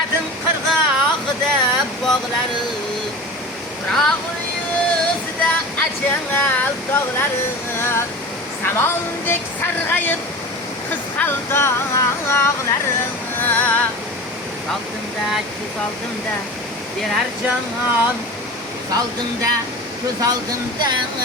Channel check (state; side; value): normal; both; correlation 0.33